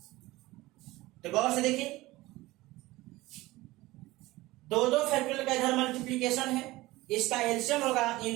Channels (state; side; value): quieter; left; 19.0 dB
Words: तो गौर से देखिए, दो फैक्टोरियल का इधर मल्टीप्लीकेशन है, इसका एलसीएम होगा